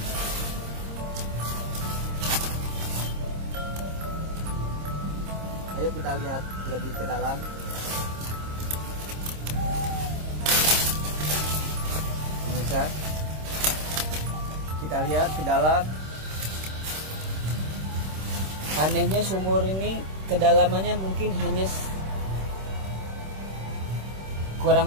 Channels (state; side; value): late; left; 26 ms